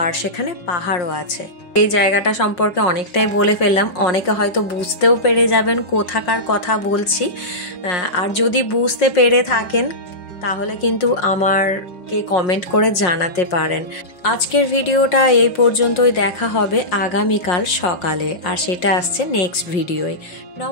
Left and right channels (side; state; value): right; late; 5.6 ms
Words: সেখানে পাহাড়ও আছে। এই জায়গাটা সম্পর্কে অনেকটাই বলে ফেললাম, অনেকে হয়তো বুঝতেও পেরে যাবেন কোথাকার কথা বলছি। আর যদি বুঝতে পেরে থাকেন তাহলে কিন্তু আমাকে কমেন্ট করে জানাতে পারেন। আজকের ভিডিওটা এই পর্যন্তই, দেখা হবে আগামীকাল সকালে, আর সেটা আসছে নেক্সট ভিডিওয়।